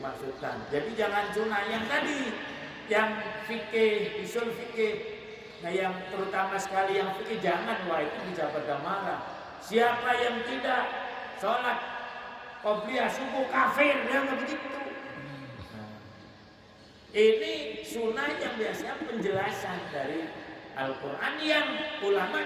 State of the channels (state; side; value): identical; both; correlation 1.00